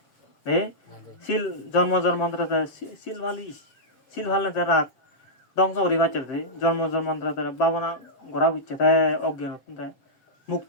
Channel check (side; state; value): right; late; 7.3 ms